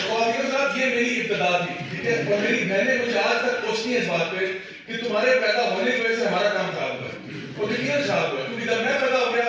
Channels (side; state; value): both; identical; correlation 1.00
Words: یہ میری ابتدا تھی ٹھیک ہے. اور میری بہنیں مجھے آج تک پوچھتی ہیں اس بات پہ کہ تمہارے پیدا ہونے کی وجہ سے ہمارا کام خراب ہوا ہے اور یقیناً خراب ہوا ہے کیونکہ جب میں پیدا ہو گیا